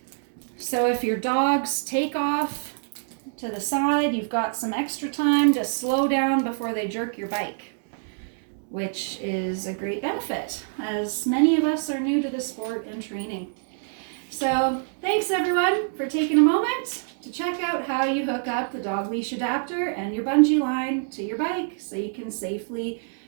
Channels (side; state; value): left; silent; digital silence